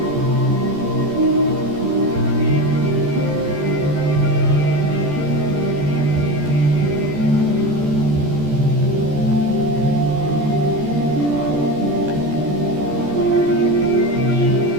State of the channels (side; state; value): left; late; 14 ms